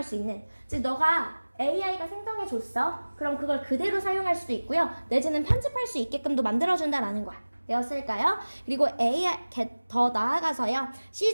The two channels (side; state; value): both; inverted; correlation -1.00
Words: 수 있는. 즉, 너가 AI가 생성해줬어. 그럼 그걸 그대로 사용할 수도 있고요. 내지는 편집할 수 있게끔도 만들어준다라는 거야. 되었을까요? 그리고 AI 더 나아가서요.